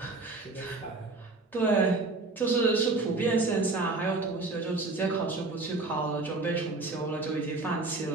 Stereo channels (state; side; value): quieter; left; 3.4 dB